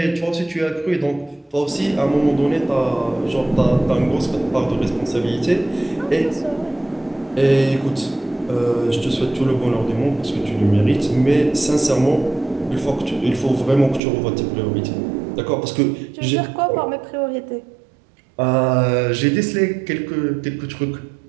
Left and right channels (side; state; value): left; drops out; at 14.0 s